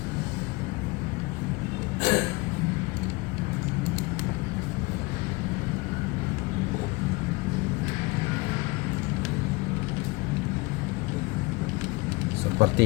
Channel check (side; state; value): right; quieter; 24.5 dB